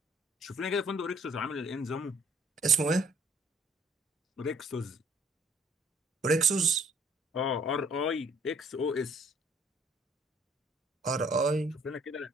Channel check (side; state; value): both; normal; correlation 0.60